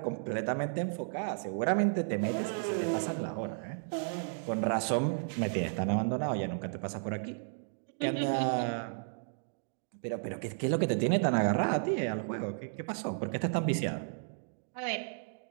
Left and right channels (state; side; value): silent; left; digital silence